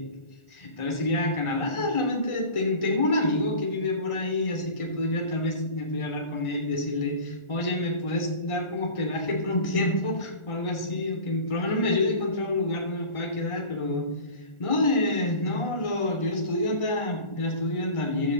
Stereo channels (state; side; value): late; right; 1.4 ms